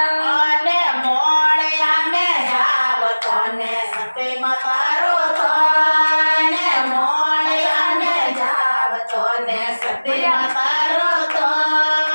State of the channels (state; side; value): inverted; both; correlation -1.00